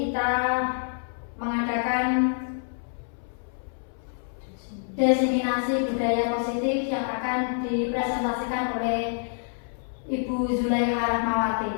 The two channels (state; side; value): silent; right; 60 dB below the other